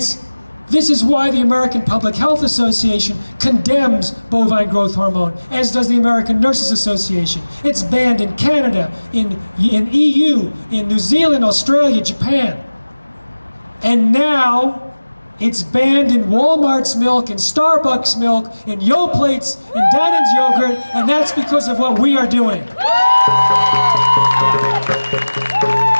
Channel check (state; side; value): inverted; both; correlation -1.00